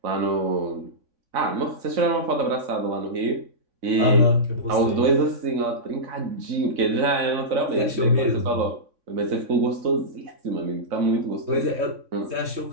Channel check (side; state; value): left; late; 3.6 ms